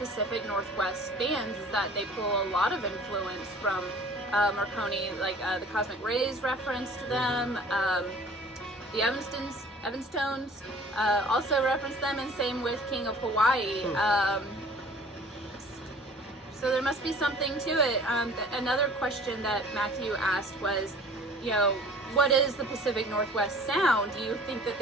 Northwest bands, is that they pull a lot of influence from Morricone, the Cosmic Rays reference to them. The Evanstones also reference them, and same with King of Hawaii. So there must be something to it. Another question that Matthew asked was, what is the Pacific Northwest sound? Do you think that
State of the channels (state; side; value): normal; both; correlation 0.48